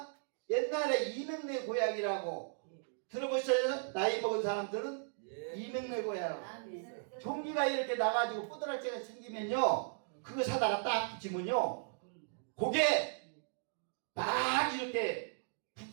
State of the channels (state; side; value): silent; left; digital silence